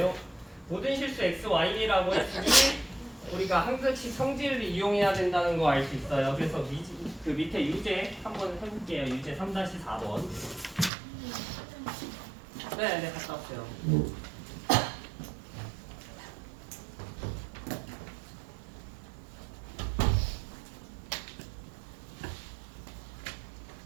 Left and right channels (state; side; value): drops out; left; at 10.9 s